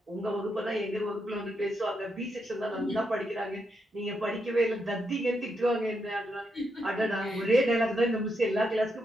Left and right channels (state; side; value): normal; both; correlation 0.81